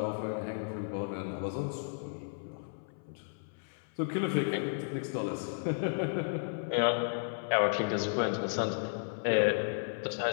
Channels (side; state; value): right; silent; 55 dB below the other